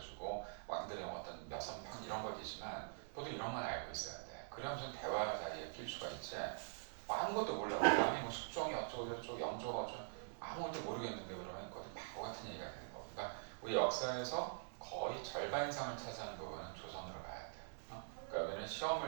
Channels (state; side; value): silent; left; digital silence